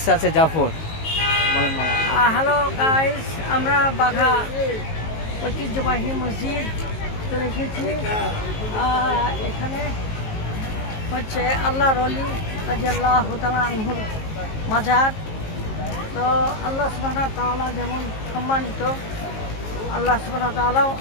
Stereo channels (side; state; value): right; late; 19 ms